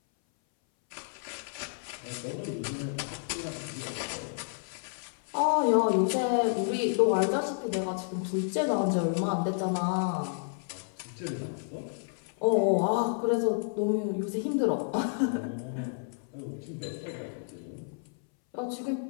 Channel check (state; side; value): silent; right; 57 dB below the other